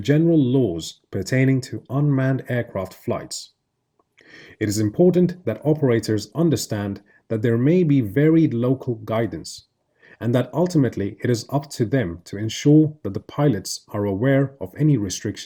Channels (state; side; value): identical; both; correlation 1.00